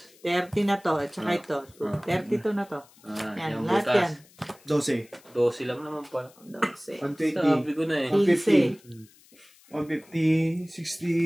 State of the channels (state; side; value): noise; left; hiss, 27 dB below the sound